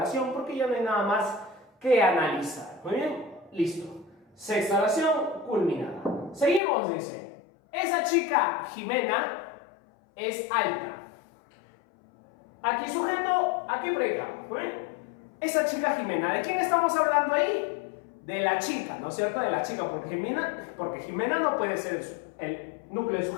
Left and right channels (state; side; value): drops out; right; at 6.6 s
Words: porque ya no hay nada más que analizar. Muy bien, listo. Sexta oración culminada. Seguimos, dice. Esa chica, Jimena, es alta. Aquí sujeto, aquí predicado. Muy bien. Esa chica Jimena, ¿de quién estamos hablando ahí? De la chica, ¿no es cierto? De la chica, porque Jimena no puede ser el núcleo del